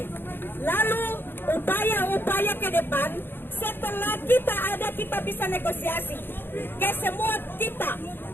Lalu upaya-upaya ke depan setelah kita ada, kita bisa negosiasi ke semua kita,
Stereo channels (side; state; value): right; late; 0.10 ms